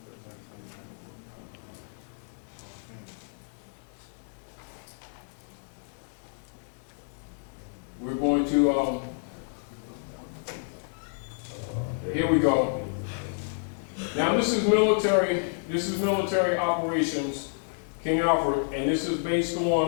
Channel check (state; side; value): silent; right; digital silence